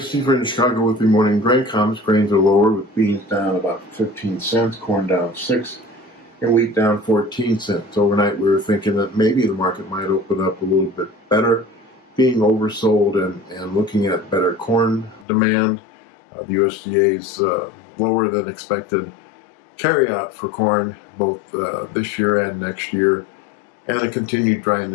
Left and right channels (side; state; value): right; drops out; at 15.2 s